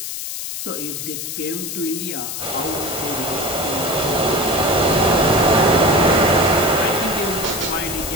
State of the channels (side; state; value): left; noise; hiss, 6 dB below the sound